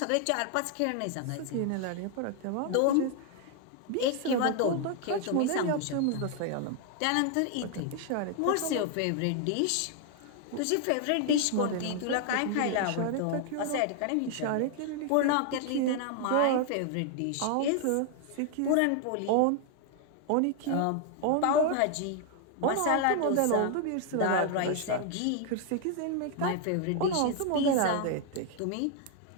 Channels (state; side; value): different; both; correlation 0.00